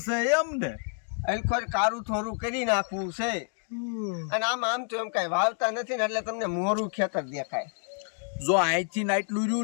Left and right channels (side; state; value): right; silent; 56 dB below the other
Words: છે એમ ને? અલખોર કારું થોડું કરી નાખવું છે. અને આમ તો એમ કઈ વાવતા નથી ને, એટલે તમને મોરું ખેતર દેખાય. જો અહીંથી આટલું